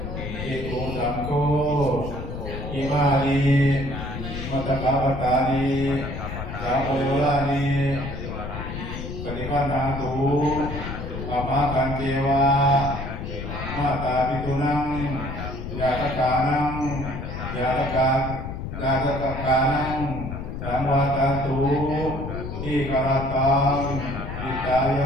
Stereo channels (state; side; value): noise; left; rumble, 6 dB below the sound